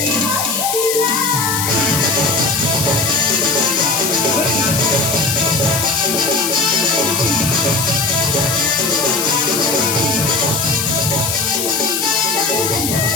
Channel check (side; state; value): left; noise; hiss, 1 dB below the sound